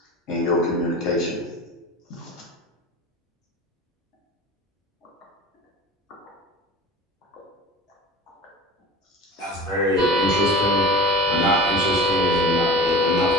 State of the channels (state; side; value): normal; both; correlation 0.36